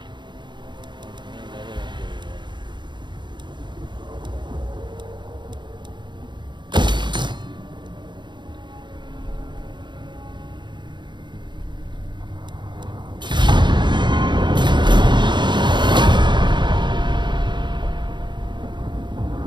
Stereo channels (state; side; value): late; left; 0.22 ms